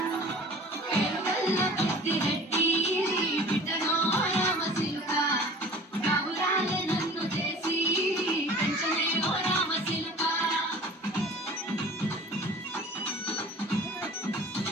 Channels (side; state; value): both; normal; correlation 0.43